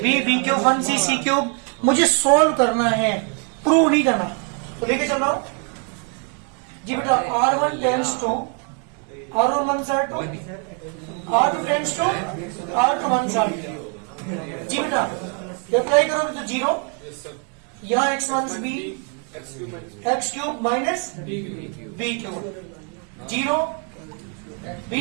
b cube 1c c cube मुझे सोल्व करना है, प्रूव नहीं करना। तो लेके चल रहा हूं जी बेटा। r1 tends to r1 one side r2 tends to r2 one side जी बेटा। अप्लाई करोगे तो जीरो, यहाँ x one b x cube minus b cube zero b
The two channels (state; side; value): quieter; left; 38.2 dB